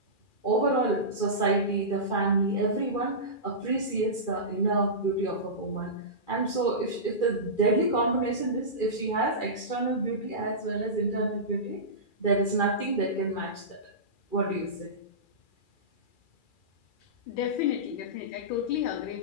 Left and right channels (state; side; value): late; right; 2.4 ms